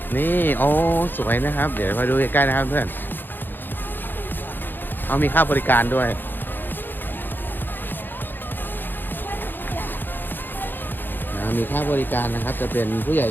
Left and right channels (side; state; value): right; late; 0.095 ms